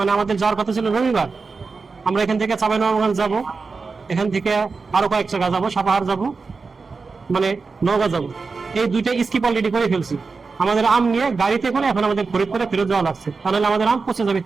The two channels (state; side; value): quieter; left; 4.5 dB